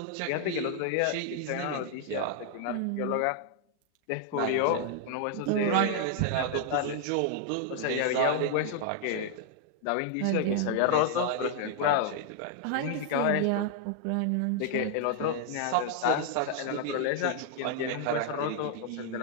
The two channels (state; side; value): different; both; correlation 0.00